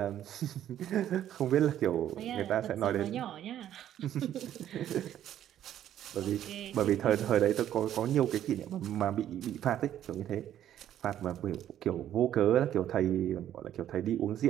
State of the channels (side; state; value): left; quieter; 11.2 dB